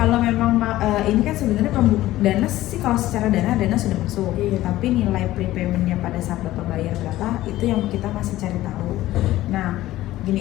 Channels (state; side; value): quieter; right; 15.6 dB